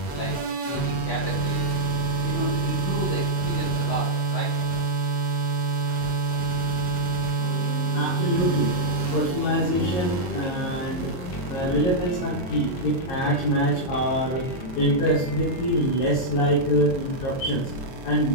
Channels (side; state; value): right; late; 22 ms